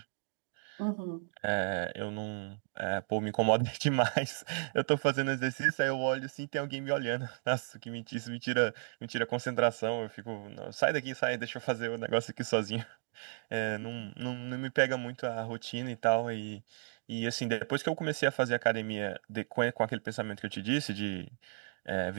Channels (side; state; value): left; silent; digital silence